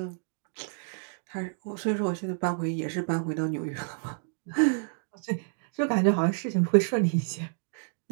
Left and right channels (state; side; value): silent; left; digital silence